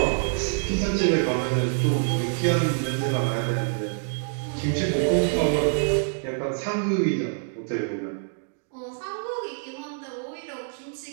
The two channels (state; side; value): silent; left; digital silence